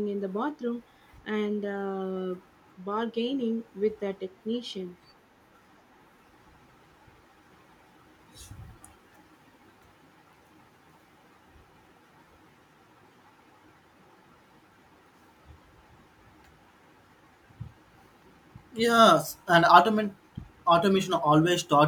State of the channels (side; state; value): both; identical; correlation 1.00